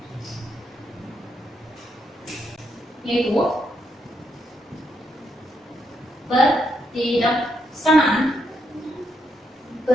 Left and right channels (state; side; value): normal; both; correlation 0.78